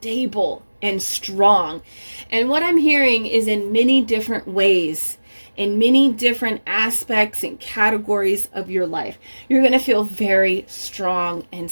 and strong. And what I'm hearing is in many different ways, in many different aspects and categories of your life, you're going to feel very strong and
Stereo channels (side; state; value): both; inverted; correlation -1.00